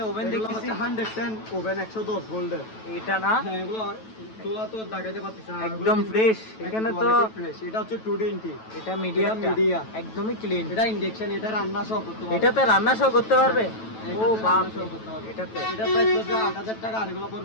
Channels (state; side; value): late; right; 9.1 ms